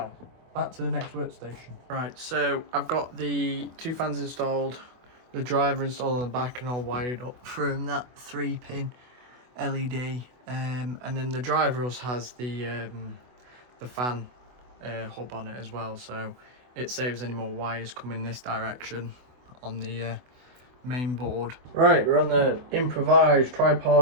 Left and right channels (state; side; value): late; left; 24 ms